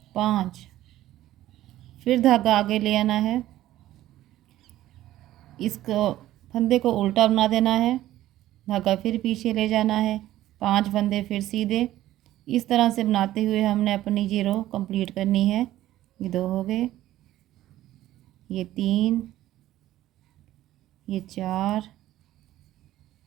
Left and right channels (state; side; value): quieter; left; 14.3 dB